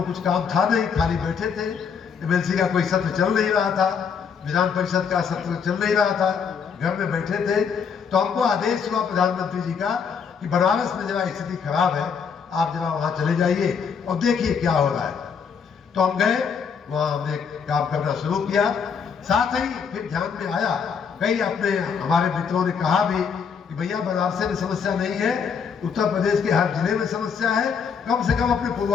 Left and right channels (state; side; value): quieter; right; 6.5 dB